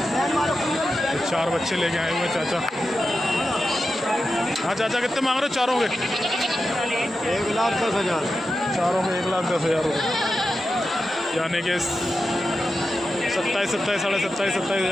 ये 4 बच्चे लेके आए हुए हैं चाचा। हाँ चाचा कितने मांग रहे हो चारों के? 1,10,000 चारों में 1,10,000 रुपये, यानी कि 27 साढ़े 27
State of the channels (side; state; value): both; normal; correlation 0.90